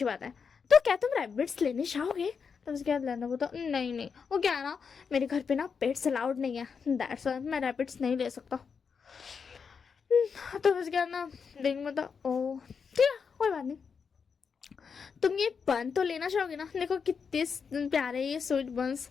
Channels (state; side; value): quieter; right; 6.0 dB